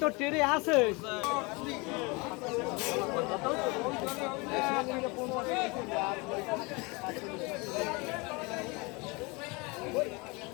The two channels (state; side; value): quieter; right; 27.2 dB